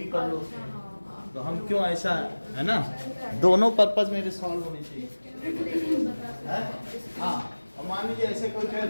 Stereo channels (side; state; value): both; inverted; correlation -1.00